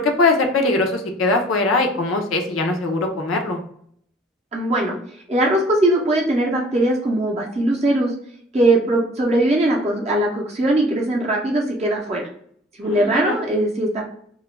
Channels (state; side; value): normal; both; correlation 0.49